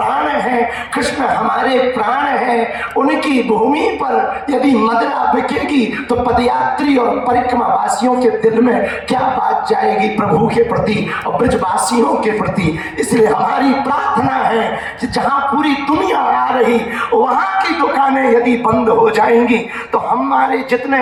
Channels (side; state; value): both; identical; correlation 1.00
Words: है, कृष्ण हमारे प्राण है, उनकी भूमि पर यदि मदिरा बिकेगी तो पदयात्री और परिक्रमा वासियों के दिल में क्या बात जाएगी प्रभु के प्रति और ब्रजवासियों के प्रति। इसलिए हमारी प्रार्थना है कि जहाँ पूरी दुनिया आ रही, वहाँ की दुकानें यदि बंद हो जाएंगी तो हमारे जितने